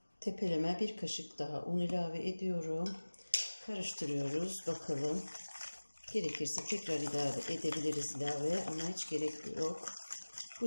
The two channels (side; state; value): both; inverted; correlation -1.00